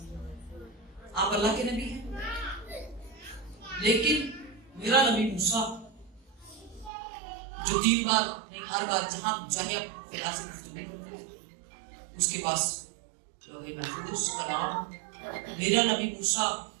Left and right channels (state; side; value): drops out; left; at 6.9 s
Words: آپ اللہ کے نبی ہیں, لیکن میرا نبی موسیٰ جو 3 بار نہیں ہر بار جہاں چاہے خدا سے گفتگو کرتے ہیں اس کے پاس لوح محفوظ کلام, میرا نبی موسیٰ